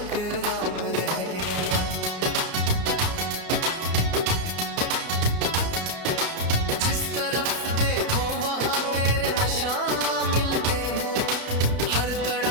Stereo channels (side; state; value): left; late; 31 ms